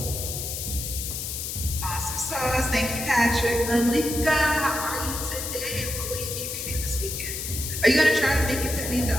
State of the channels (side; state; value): left; noise; hiss, 5 dB below the sound